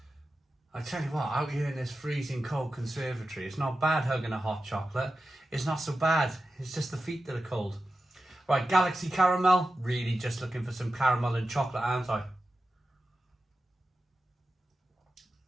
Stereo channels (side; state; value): both; normal; correlation 0.92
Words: I tell you what, out here in this freezing cold conservatory, it's not bad hugging a hot chocolate. It's not so bad. It's just the feet that are cold. Right, Galaxy caramel. Really just looking for some caramel and chocolate, aren't I?